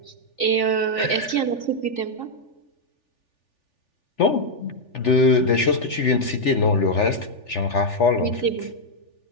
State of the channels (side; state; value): right; late; 3.4 ms